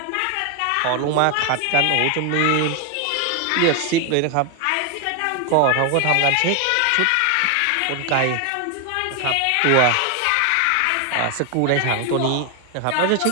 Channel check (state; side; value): different; both; correlation 0.01